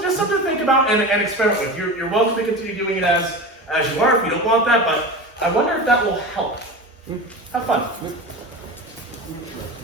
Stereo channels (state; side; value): normal; both; correlation 0.28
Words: to think about and experiment with. You're welcome to continue doing it as you are if you don't want that, but I wonder if that will help. Have fun.